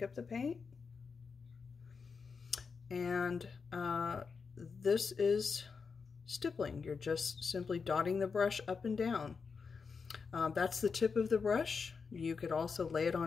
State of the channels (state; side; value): quieter; right; 5.3 dB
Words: up the paint. And this is stippling. You're just simply dotting the brush up and down. That's the tip of the brush. You could also lay it